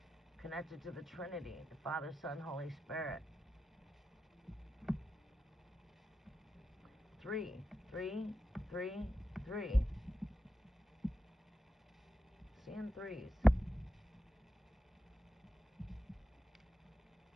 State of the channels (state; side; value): normal; both; correlation 0.90